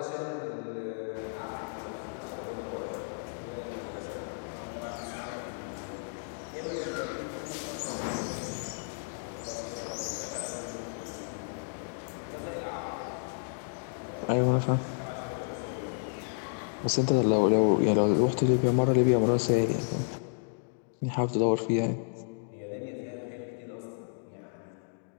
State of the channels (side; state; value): right; silent; digital silence